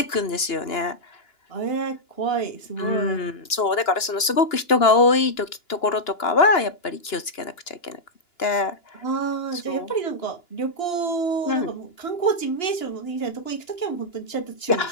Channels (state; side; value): late; right; 2.9 ms